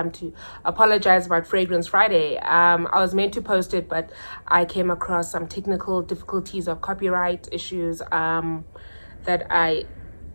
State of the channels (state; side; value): inverted; both; correlation -1.00